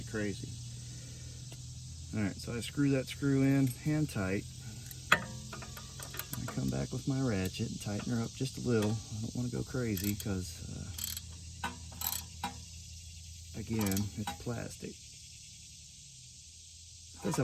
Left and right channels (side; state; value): both; identical; correlation 1.00